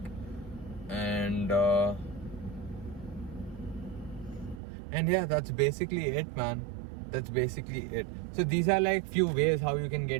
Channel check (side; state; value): left; drops out; at 4.6 s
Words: And yeah, that's basically it, man. That's basically it. So these are like few ways how you can